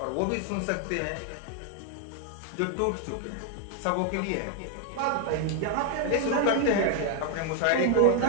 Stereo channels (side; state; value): both; different; correlation 0.00